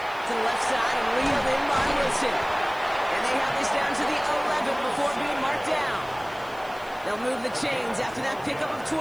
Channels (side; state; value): left; noise; hiss, 24 dB below the sound